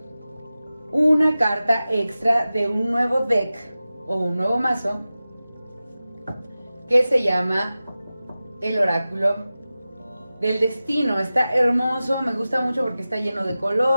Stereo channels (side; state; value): both; inverted; correlation -0.95